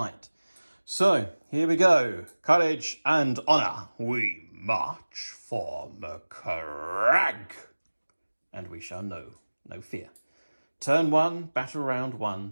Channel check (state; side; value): inverted; both; correlation -1.00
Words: So, here we go. Courage and honour. We march for Macleod. And we shall know no fear. Turn 1, battle round